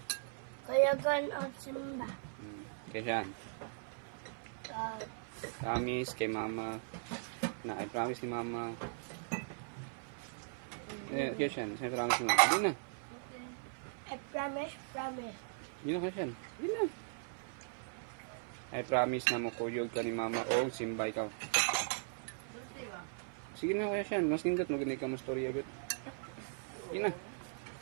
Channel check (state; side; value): silent; left; 52 dB below the other